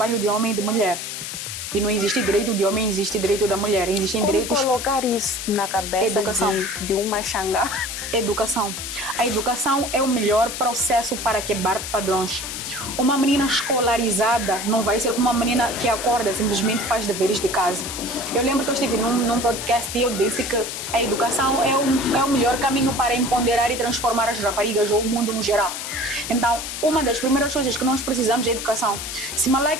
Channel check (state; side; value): noise; left; hiss, 6 dB below the sound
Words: de homem e de mulher. E não existe direito de homem, existe direito da mulher. Existem direitos... colocar isso na cabeça de uma xangá? Educação. A educação é o melhor processo para quebrar padrões. Uma menina escolarizada não vai ser uma menina que acorda simplesmente faz deveres de casa. Eu lembro que eu estive num podcast e eu disse que a educação é o melhor caminho para empoderar e transformar as raparigas ou o mundo no geral. Então, uma das primeiras coisas que nós precisamos é educação. Se